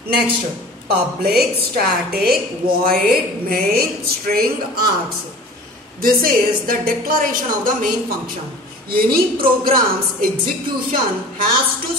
Next, public, static, void, main, string, args. This is the declaration of the main function. Any program's execution has to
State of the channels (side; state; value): both; normal; correlation 0.42